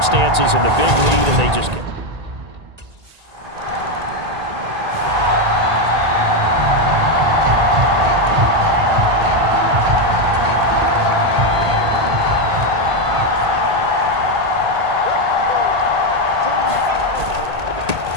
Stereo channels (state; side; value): late; left; 1.8 ms